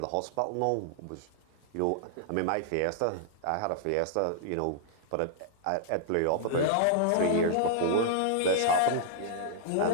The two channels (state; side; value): different; both; correlation -0.01